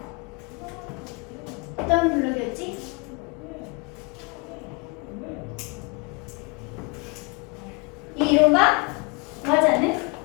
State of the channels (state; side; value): quieter; right; 29.4 dB